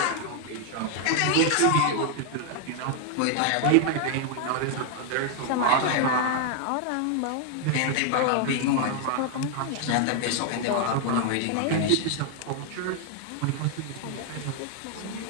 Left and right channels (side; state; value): both; different; correlation 0.00